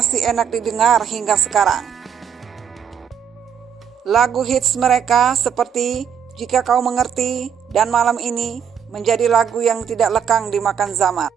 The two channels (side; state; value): left; quieter; 8.0 dB